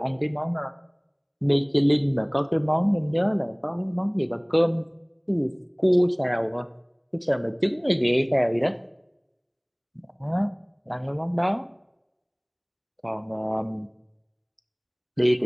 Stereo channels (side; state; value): both; identical; correlation 1.00